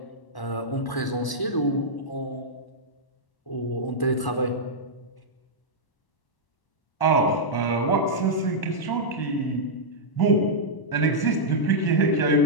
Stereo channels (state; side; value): late; right; 1.1 ms